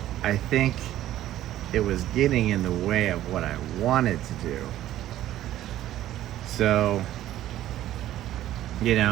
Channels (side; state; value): left; quieter; 13.3 dB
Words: I think it was getting in the way of what I wanted to do. So, you know,